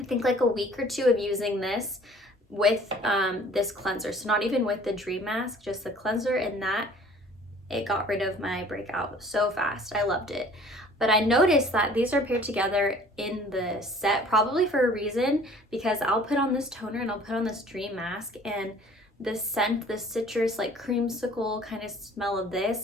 think like a week or two of using this with this cleanser, so not even with the Dream Mask, just the cleanser, and that it got rid of my breakout so fast. I loved it. But I noticed that these are paired together in the set, probably for a reason, because I'll put on this toner and I'll put on this Dream Mask, and the scent, the citrus, like creamsicle kind of smell of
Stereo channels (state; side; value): normal; both; correlation 0.51